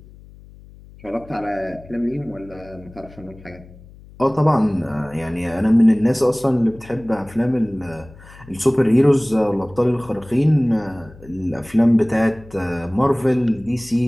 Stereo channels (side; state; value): left; noise; hum, 21 dB below the sound